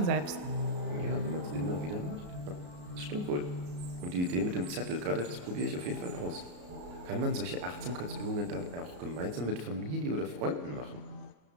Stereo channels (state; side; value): late; left; 34 ms